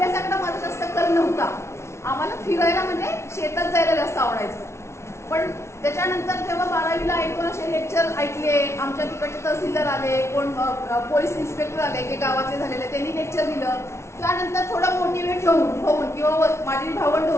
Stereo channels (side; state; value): right; late; 0.13 ms